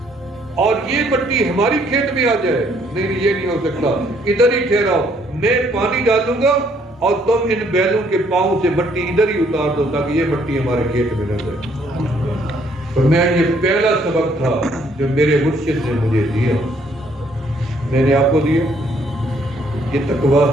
اور یہ مٹی ہماری کھیت میں آ جائے؟ نہیں یہ نہیں ہو سکتا، ادھر ہی ٹھہراؤ، میں پانی ڈالوں گا اور تم ان بیلوں کے پاؤں سے مٹی ادھر ہی اتار دو تاکہ یہ مٹی ہمارے کھیت میں نہ جائے۔ فرمایا یہ پہلا سبق تھا جو میرے مرشد نے مجھے دیا، میں نے آپ کو دیا، یہ تقویٰ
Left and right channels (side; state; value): both; normal; correlation 0.66